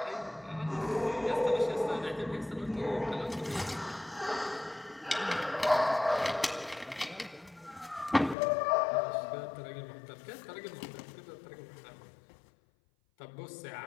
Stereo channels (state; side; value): drops out; right; at 8.3 s